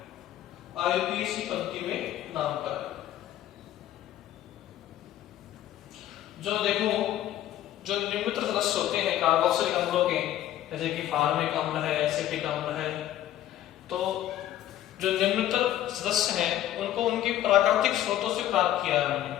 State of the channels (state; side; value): quieter; right; 12.6 dB